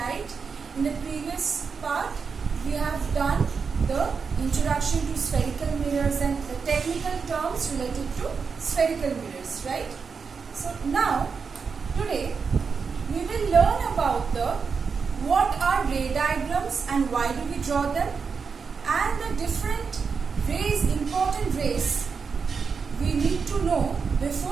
In the previous part we have done the introduction to spherical mirrors and the technical terms related to spherical mirrors, right? So now today we will learn about what are ray diagrams and why do we draw them, and the different rays, important rays we need to know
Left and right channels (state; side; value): quieter; left; 5.5 dB